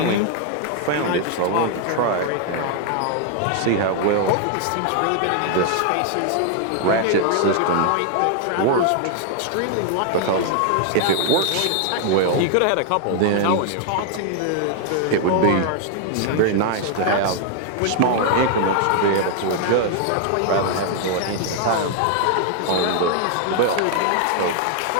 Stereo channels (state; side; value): different; both; correlation 0.00